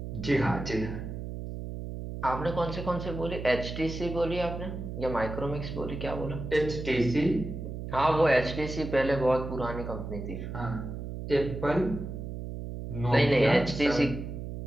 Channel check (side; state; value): right; noise; hum, 7 dB below the sound